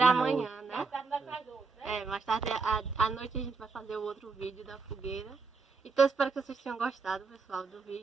amanhã, né? Mais tarde à noite a gente vai fazer o outro vídeo da fogueira. Então espero que vocês tenham gostado, pessoal, do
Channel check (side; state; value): left; quieter; 4.5 dB